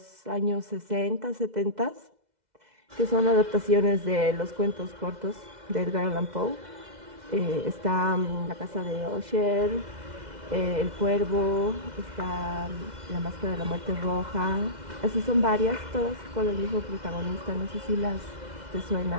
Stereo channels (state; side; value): late; left; 2.0 ms